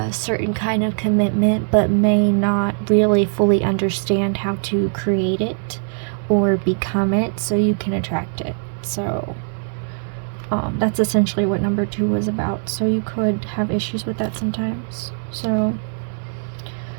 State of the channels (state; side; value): silent; left; digital silence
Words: certain kind of commitment, but may not really fully understand how to create it or become it, so you can attract it. So that's essentially what number 2 was about. So you could have issues with that sometimes. So